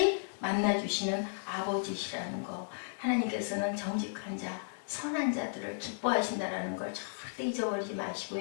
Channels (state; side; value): silent; right; digital silence